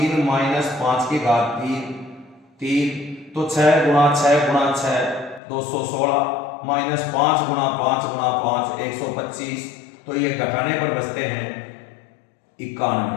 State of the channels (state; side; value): drops out; right; at 5.4 s